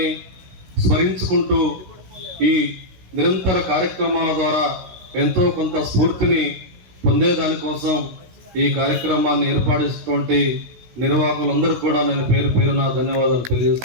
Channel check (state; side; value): late; left; 16 ms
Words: స్మరించుకుంటూ ఈ నిరంతర కార్యక్రమాల ద్వారా ఎంతో కొంత స్ఫూర్తిని పొందేదానికోసం ఈ కార్యక్రమాన్ని ఏర్పాటు నిర్వాహకులందరూ కూడా నేను పేరు పేరున ధన్యవాదాలు